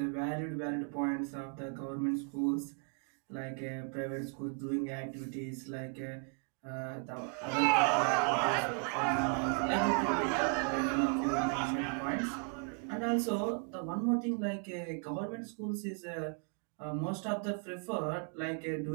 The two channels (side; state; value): left; quieter; 36.2 dB